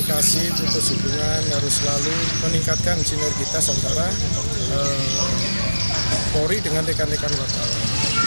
putus hubungan, harus selalu meningkatkan sinergitas antara Polri dengan rekan-rekan wartawan.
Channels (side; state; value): both; inverted; correlation -1.00